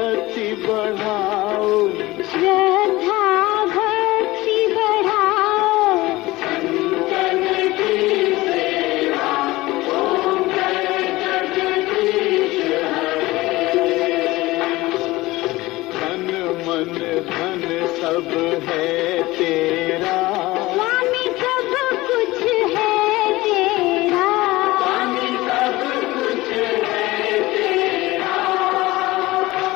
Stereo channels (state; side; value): quieter; right; 19.4 dB